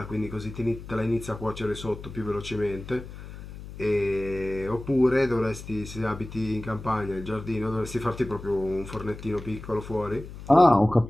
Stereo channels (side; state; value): left; noise; hum, 13 dB below the sound